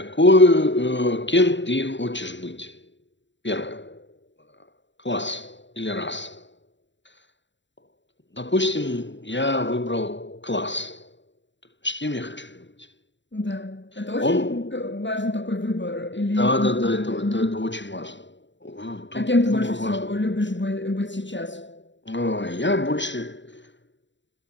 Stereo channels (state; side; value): late; right; 0.53 ms